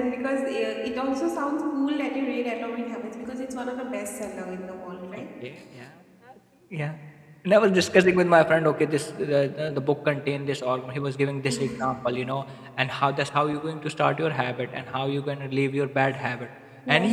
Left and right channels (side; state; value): both; identical; correlation 1.00